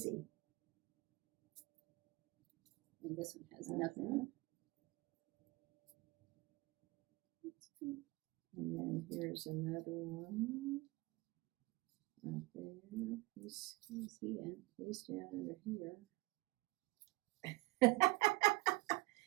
And this one has Uh-huh. nothing. And then here's another one. Right there. He's down under here.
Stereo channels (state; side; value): quieter; left; 22.0 dB